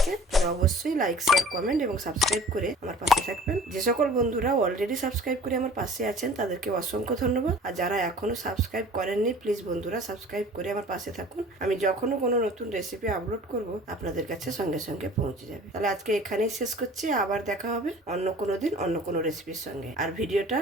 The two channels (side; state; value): both; normal; correlation 0.46